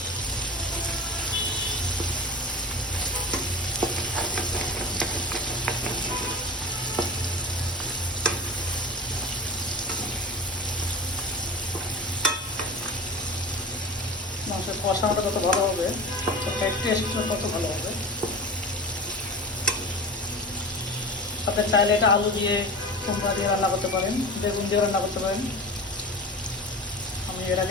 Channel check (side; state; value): both; normal; correlation 0.33